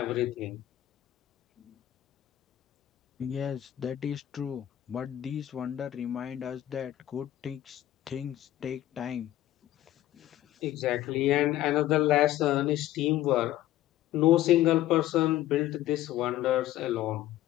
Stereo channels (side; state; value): right; quieter; 13.7 dB